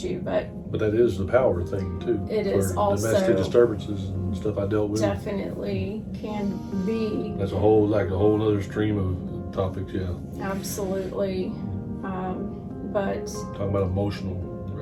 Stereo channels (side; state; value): both; identical; correlation 1.00